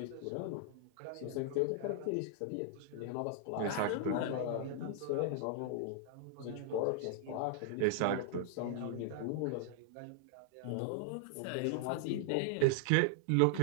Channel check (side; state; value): both; different; correlation -0.01